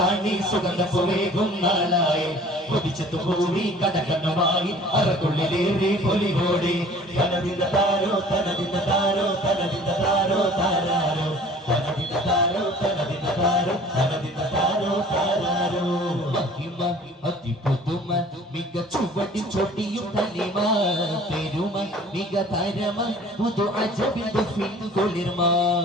സുഗന്ധപ്പുവേകും നാളായി കൊതിച്ചെത്തു ഭൂമി കടകണ്ണമായി അറക്കുള്ളിലേറി പൊലിവോടെ തനതിന്റെ താരോ തനതിന്റെ താരോ തനതിന്റെ താരോ താരാരോ തനതിന്റെ താരോ തനതിന്റെ താരോ തനതിന്റെ താരോ താരാരോ മഹിമ അതിപുതുമ മിക ചുവടി ചൊടിയും തനിമ പെരുമ മിക തരമ പുതു അജബിന്റെ ഫിൻ കുളിർമ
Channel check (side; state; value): both; normal; correlation 0.49